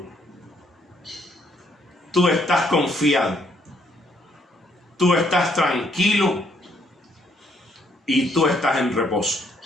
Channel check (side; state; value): both; normal; correlation 0.69